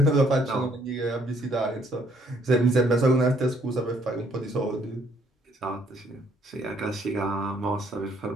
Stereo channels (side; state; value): both; normal; correlation 0.66